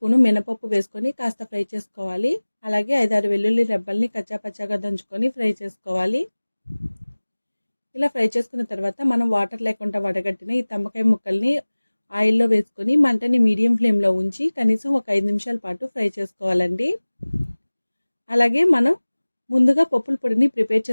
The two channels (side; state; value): both; inverted; correlation -1.00